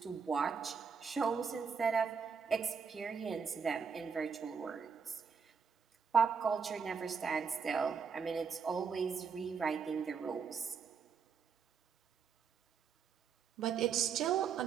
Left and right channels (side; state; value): left; quieter; 6.1 dB